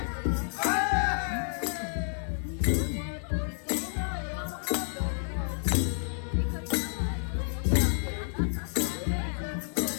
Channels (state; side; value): silent; right; digital silence